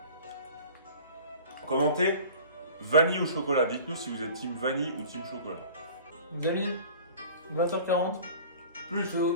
Commentez vanille ou chocolat. Dites-nous si vous êtes team vanille ou team chocolat. Les amis, 20h40. Plus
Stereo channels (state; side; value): inverted; both; correlation -0.43